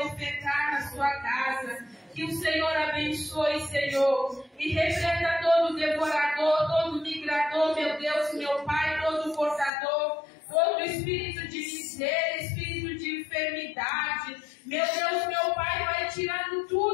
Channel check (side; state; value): right; drops out; at 9.7 s